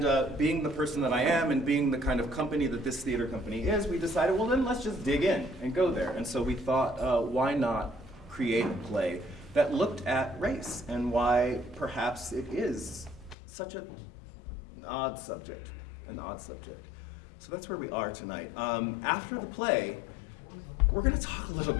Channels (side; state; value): right; drops out; at 13.4 s